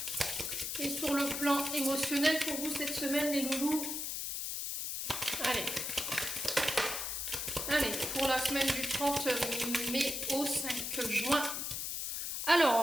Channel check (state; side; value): noise; left; hiss, 3 dB below the sound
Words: et sur le plan émotionnel pour vous cette semaine, les loulous. Allez. Allez, pour la semaine du 30 mai au 5 juin.